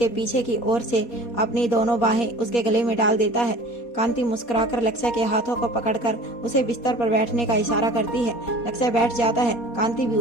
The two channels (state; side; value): late; right; 4.2 ms